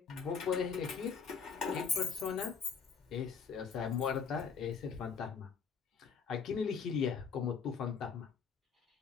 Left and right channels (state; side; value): quieter; right; 6.1 dB